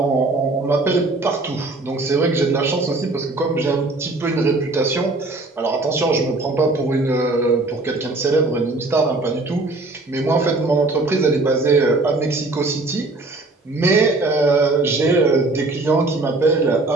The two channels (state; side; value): quieter; left; 3.1 dB